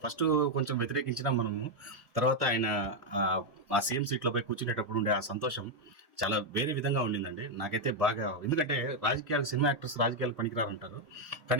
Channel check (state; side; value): normal; both; correlation 0.02